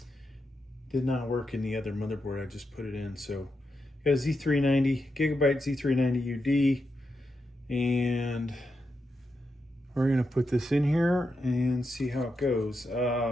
Did not work in the other motherboard I just put it in. So got a Z390, Gigabyte Z390 UD, and we're gonna put this in here and see how it goes. You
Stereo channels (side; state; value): both; normal; correlation 0.86